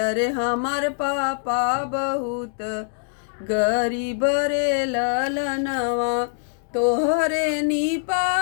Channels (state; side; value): silent; right; digital silence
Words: अरे हमार पापा बहुत गरीब रे ललनवा। तोहरे नी